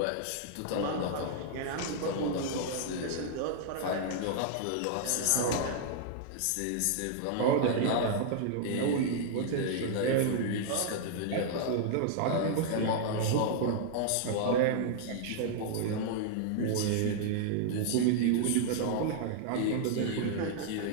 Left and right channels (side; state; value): both; different; correlation -0.01